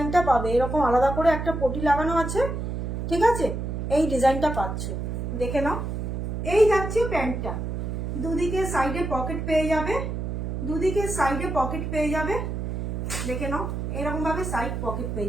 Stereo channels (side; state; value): right; noise; hum, 3 dB below the sound